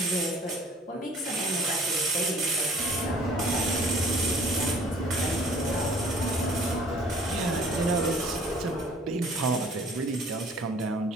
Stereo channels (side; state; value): both; normal; correlation 0.53